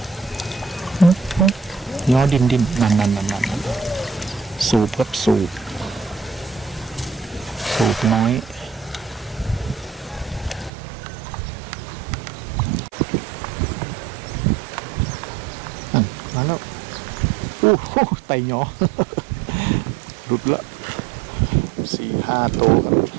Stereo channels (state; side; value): drops out; left; at 10.7 s